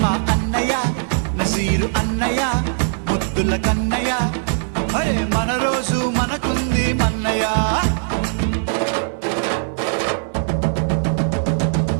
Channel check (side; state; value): left; silent; digital silence